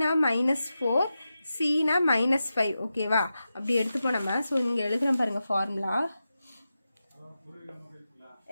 -4, சினா -5. ஓகேவா? அப்படி எடுத்துப்போம் நம்ம. ஸோ இங்கே எழுதுகிறேன் பாருங்கள் formula.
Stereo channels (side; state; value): both; inverted; correlation -0.91